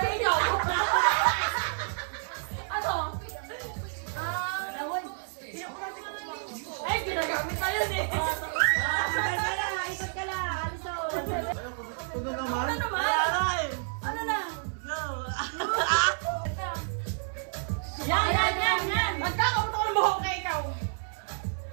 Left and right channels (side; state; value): left; silent; digital silence